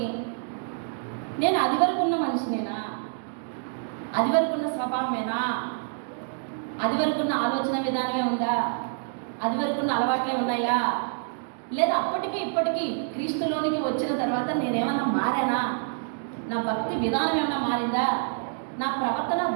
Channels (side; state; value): left; silent; digital silence